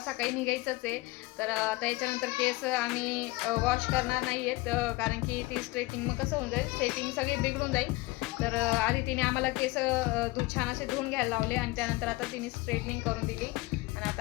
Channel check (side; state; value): right; quieter; 20.8 dB